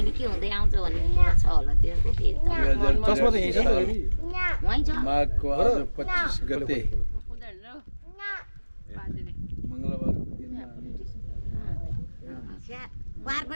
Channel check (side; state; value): both; inverted; correlation -1.00